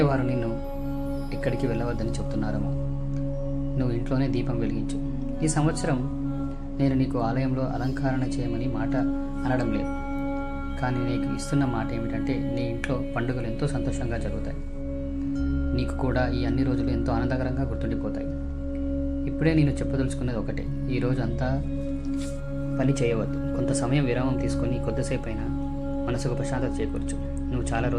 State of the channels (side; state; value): both; identical; correlation 1.00